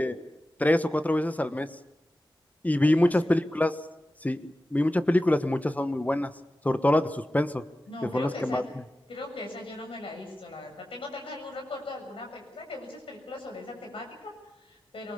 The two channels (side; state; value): both; normal; correlation 0.94